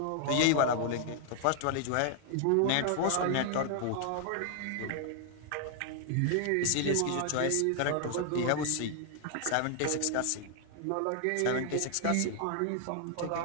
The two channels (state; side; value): different; both; correlation 0.00